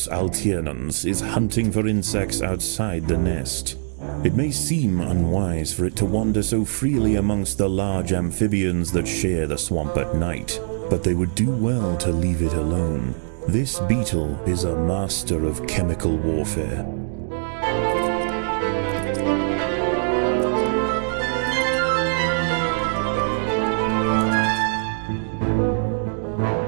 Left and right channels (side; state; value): left; silent; digital silence